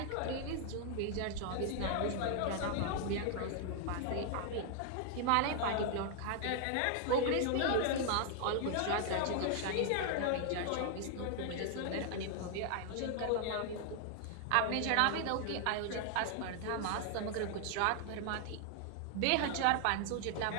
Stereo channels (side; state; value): both; different; correlation 0.00